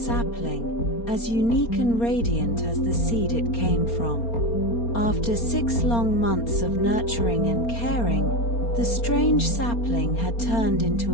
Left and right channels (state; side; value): late; right; 4.3 ms